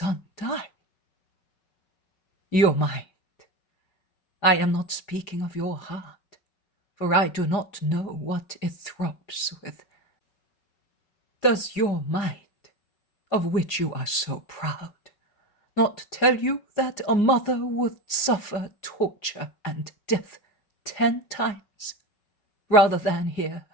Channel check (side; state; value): right; late; 4.9 ms